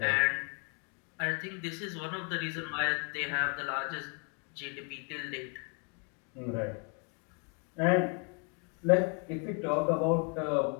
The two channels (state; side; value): quieter; right; 37.3 dB